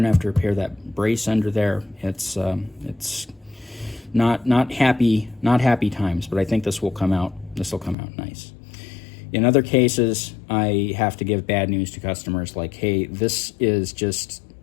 to have to repair that brace under there. It's not happy times, but I think this will come out nice. In other cases, I have to give bad news to customers, like, hey, this is just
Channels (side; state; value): right; drops out; at 8.0 s